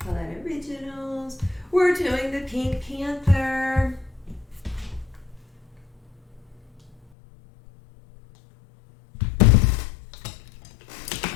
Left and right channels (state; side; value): drops out; right; at 7.0 s